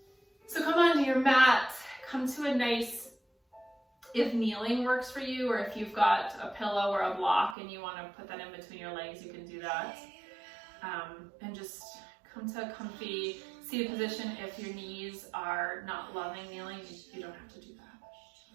So come onto your mat, come to a nice, if kneeling works for you, or if you've got a pillow or a block and you want to put that in between your legs, you can do that. And just come to a comfy seated position. If your knees are not loving kneeling, you don't have to do that.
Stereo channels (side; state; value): left; drops out; at 7.6 s